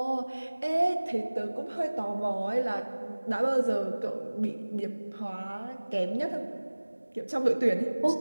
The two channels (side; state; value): both; inverted; correlation -1.00